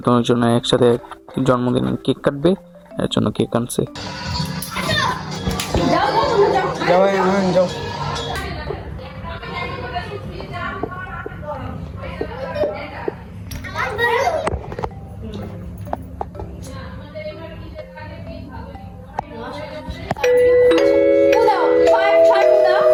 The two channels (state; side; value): identical; both; correlation 1.00